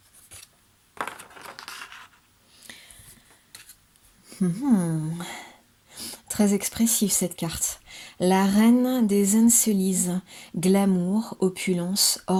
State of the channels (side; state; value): both; identical; correlation 1.00